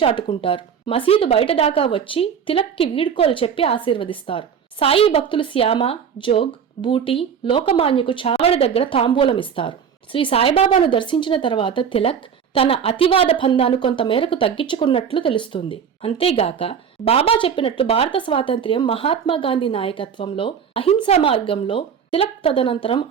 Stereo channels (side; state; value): left; quieter; 7.4 dB